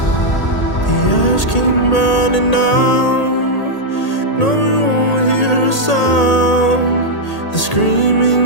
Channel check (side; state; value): right; late; 1.8 ms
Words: The ash came burning down. No, you won't hear a sound. The